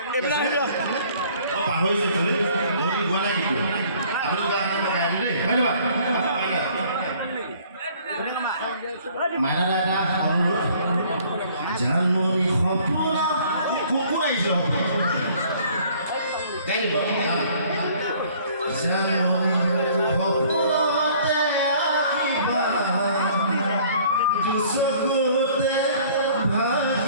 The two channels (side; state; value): both; inverted; correlation -0.56